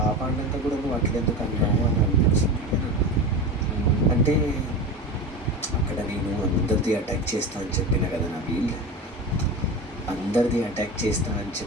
కూడా నువ్వు అట్లెందుకు అన్నావు అని అనిపించింది. అంటే అక్కడ నేను అందరిది అటాక్ చేస్తా అని చెప్పిన కదా నబీల్. అందరిది అటాక్ చేస్తా అని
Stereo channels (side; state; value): both; normal; correlation 0.26